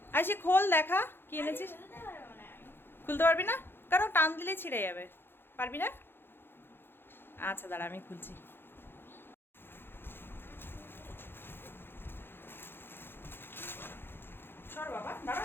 আইসি খোল, দেখা কি এনেছিস। খুলতে পারবি না? কেন, টান দিলে ছিঁড়ে যাবে। পারবি না? আচ্ছা দাঁড়া, আমি খুলছি। সর বাবা, দাঁড়া,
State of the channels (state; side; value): late; right; 0.10 ms